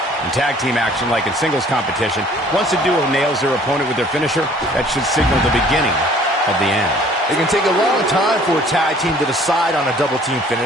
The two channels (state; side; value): normal; both; correlation 0.55